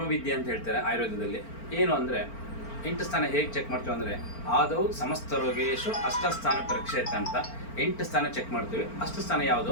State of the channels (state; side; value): late; right; 4.4 ms